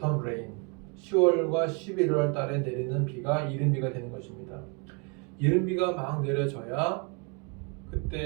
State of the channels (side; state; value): left; quieter; 34.4 dB